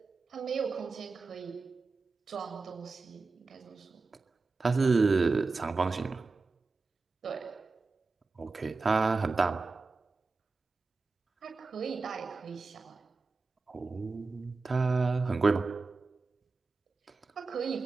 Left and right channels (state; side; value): quieter; left; 4.0 dB